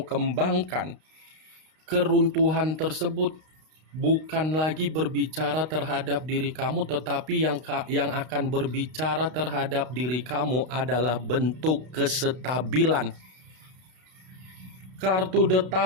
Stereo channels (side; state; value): left; late; 32 ms